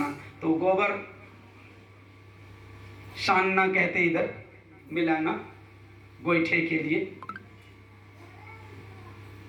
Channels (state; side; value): identical; both; correlation 1.00